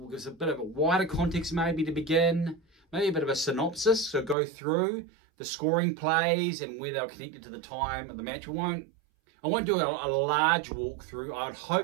a bit of a wider context maybe to begin, maybe a bit of a synopsis, so go through the scoring plays and where they were connected to the time of the match. I won't do a large walkthrough. I'll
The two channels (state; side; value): drops out; left; at 4.4 s